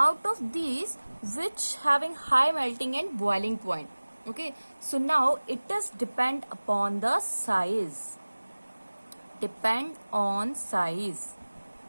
of these, which having high melting and boiling point? Okay, so now it does depend upon the size. Depend on size.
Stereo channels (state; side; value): inverted; both; correlation -1.00